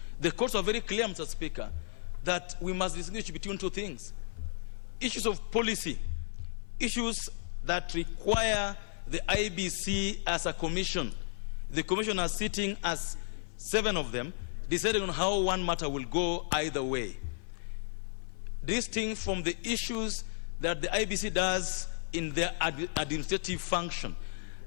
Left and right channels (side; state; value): right; silent; 56 dB below the other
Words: The courts are very clear, Mr. Speaker, that we must distinguish between two things. Issues of policy, issues that require the IBC as a commission. The commission are sitting as 7 of them, deciding on how one matter will go either way. Distinct from the issues that the IBC does in their administrative function.